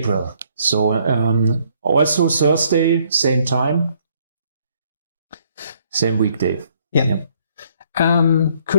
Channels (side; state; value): both; inverted; correlation -0.67